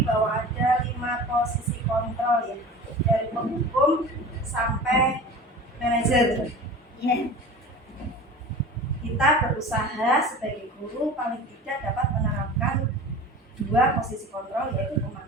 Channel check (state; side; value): normal; both; correlation 0.37